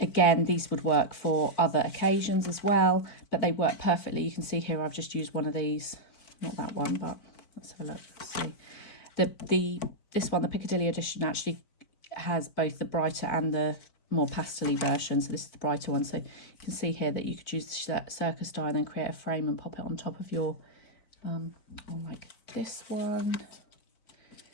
these would work for other occasions as well, but they work perfectly. You can see here I've just used one of these, not that one, but Let's have a look. See, this one, the Piccadilly edition, actually has both the brighter and the more pastel-y version. So this is the brighter one. So you can see here that you could use the Circus die and then create a frame and pop it on top of your, or like this one.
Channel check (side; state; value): right; late; 4.5 ms